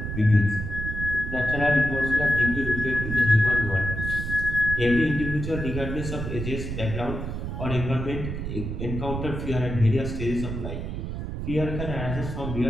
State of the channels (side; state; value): right; noise; rumble, 5 dB below the sound